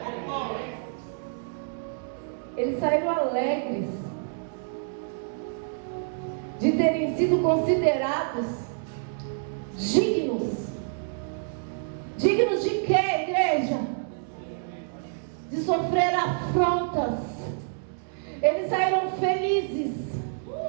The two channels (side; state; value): left; silent; digital silence